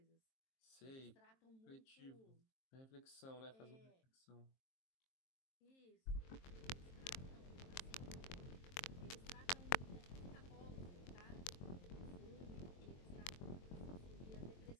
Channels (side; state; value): right; late; 23 ms